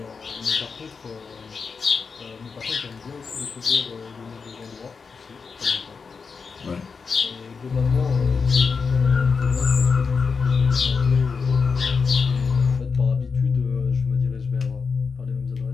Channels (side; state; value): right; quieter; 5.2 dB